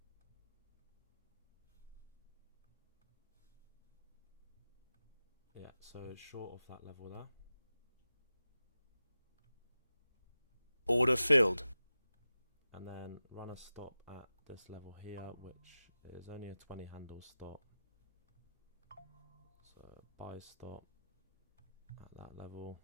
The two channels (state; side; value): inverted; both; correlation -0.94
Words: Yeah, so it's short off that level there. Order filled. And then run a stop at this level here, which is only a 20 handle stop. So buy stop at that level.